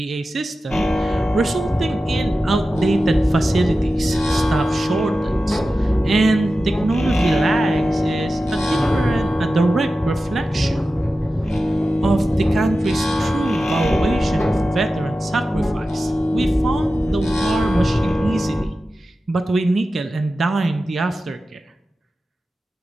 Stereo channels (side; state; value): both; normal; correlation 0.93